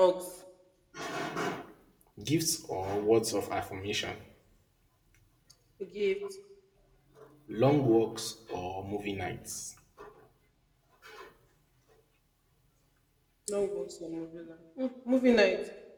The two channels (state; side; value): identical; both; correlation 1.00